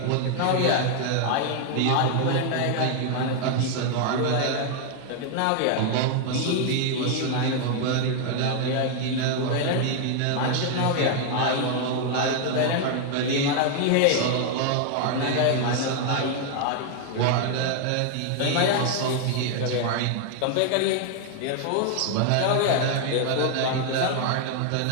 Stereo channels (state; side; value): different; both; correlation 0.00